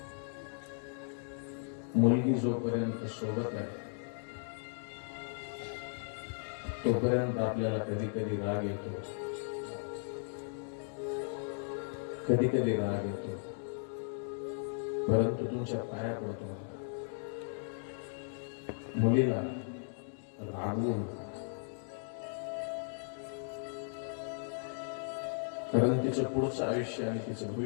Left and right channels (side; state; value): right; silent; digital silence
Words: मुलगी जोपर्यंत सोबत आहे तोपर्यंत आपल्याला कधी कधी राग येतो, कधी कधी राग येतो, परंतु तुमच्या पाया पडतो. मुलीला रागवून, कारण तिचं पुढचं आयुष्य आणि तिचं